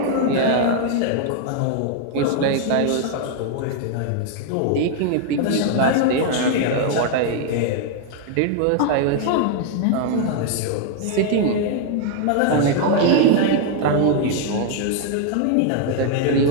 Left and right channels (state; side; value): different; both; correlation 0.00